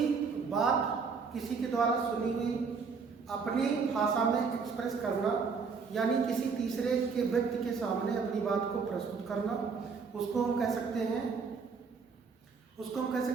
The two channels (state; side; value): quieter; left; 5.3 dB